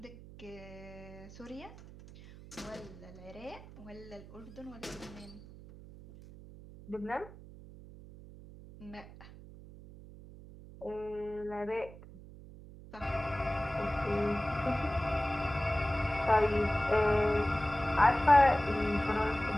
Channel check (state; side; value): noise; right; hum, 17 dB below the sound